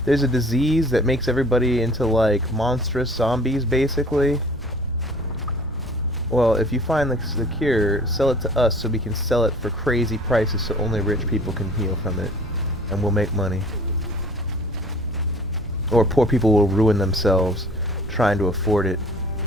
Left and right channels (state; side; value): normal; both; correlation 0.49